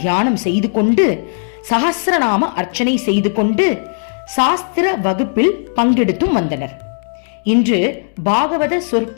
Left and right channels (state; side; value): silent; right; digital silence